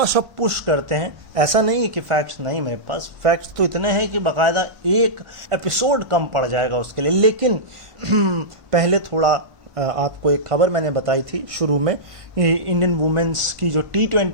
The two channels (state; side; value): late; left; 1.5 ms